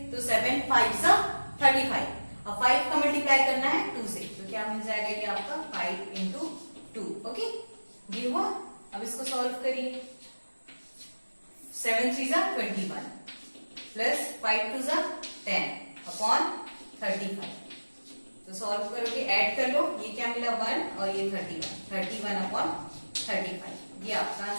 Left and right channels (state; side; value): inverted; both; correlation -1.00